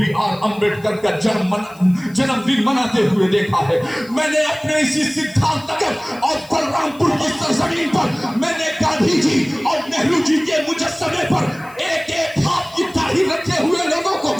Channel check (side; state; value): left; noise; hiss, 25 dB below the sound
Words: آر امبیڈکر کا جنم دن مناتے ہوئے دیکھا ہے. میں نے اپنے اسی سدھارتھ نگر اور بلرام پور کی سرزمین پر میں نے گاندھی جی اور نہرو جی کے مجسمے پر ایک ایک ہاتھ کی داڑھی رکھے ہوئے لوگوں کو